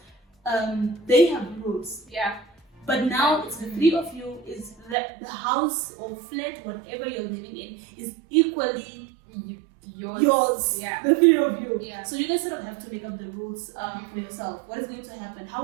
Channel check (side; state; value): left; drops out; at 5.0 s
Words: they have rules. Yeah. But now it's the three of you. Is that the house or flat, whatever you're living in, is equally yours. Yeah. The three of you. Yeah. So you guys sort of have to make up the rules for yourself. What is going to happen?